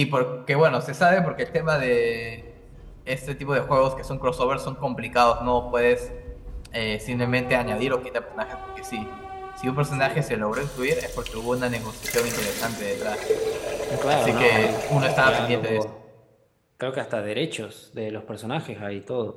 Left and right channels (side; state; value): both; identical; correlation 1.00